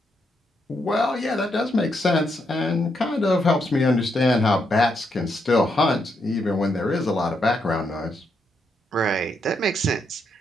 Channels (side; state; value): both; normal; correlation 0.79